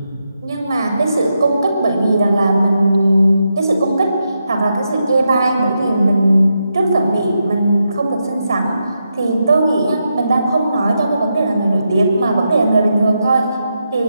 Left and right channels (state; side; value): inverted; both; correlation -0.85